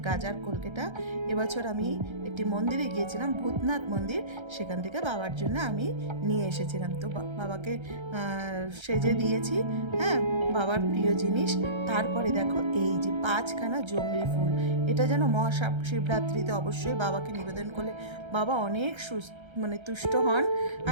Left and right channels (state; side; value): late; left; 1.3 ms